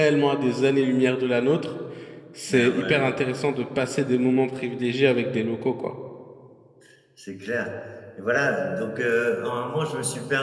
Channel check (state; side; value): identical; both; correlation 1.00